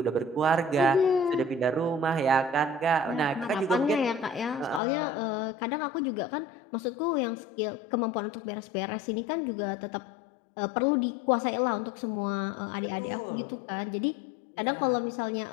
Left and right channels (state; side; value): drops out; right; at 4.8 s